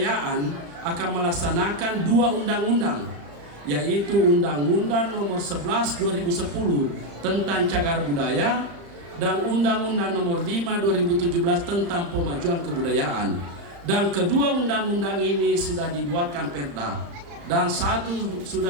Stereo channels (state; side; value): late; left; 35 ms